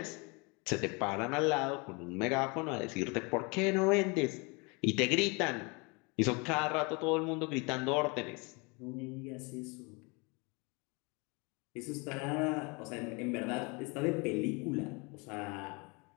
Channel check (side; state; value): right; quieter; 29.6 dB